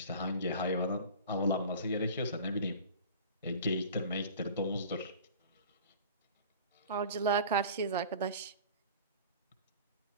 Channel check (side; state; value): both; inverted; correlation -0.41